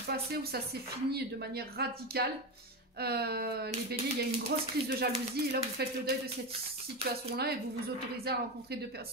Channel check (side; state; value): both; normal; correlation 0.16